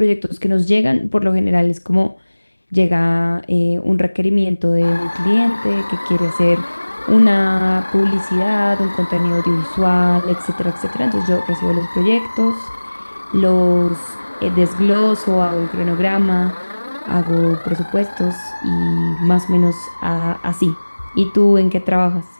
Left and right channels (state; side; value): inverted; both; correlation -1.00